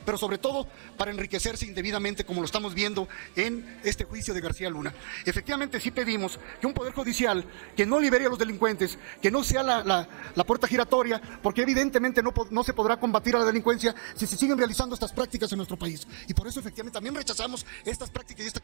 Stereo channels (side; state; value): left; silent; digital silence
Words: pero sobre todo para enriquecerse indebidamente, como lo estamos viendo en este juicio de García Luna. Efectivamente sí pedimos que un poder judicial que no libere a los delincuentes, que no sea la puerta giratoria, porque evidentemente no se podrá combatir a la delincuencia si se siguen realizando estas prácticas en nuestro país. Y por eso efectivamente también rechazamos estas prácticas y esta